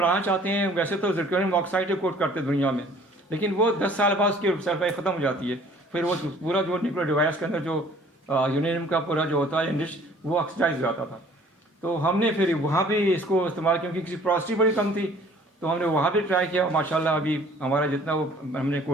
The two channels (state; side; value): normal; both; correlation 0.54